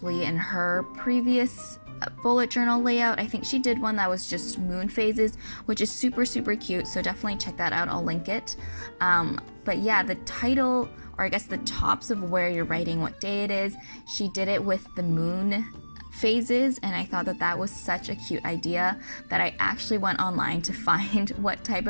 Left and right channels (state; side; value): inverted; both; correlation -1.00